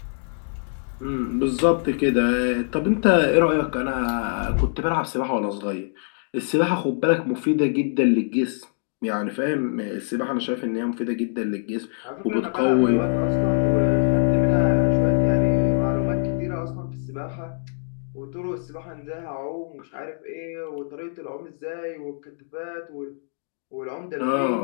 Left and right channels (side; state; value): right; silent; 63 dB below the other